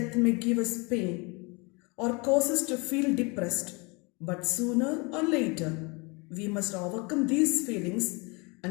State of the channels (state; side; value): quieter; right; 29.1 dB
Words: may give us pain or cause us to feel depressed, but sooner or later, we must overcome these feelings